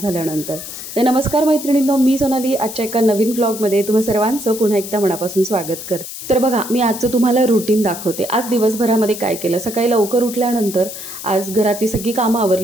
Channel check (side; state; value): left; noise; hiss, 10 dB below the sound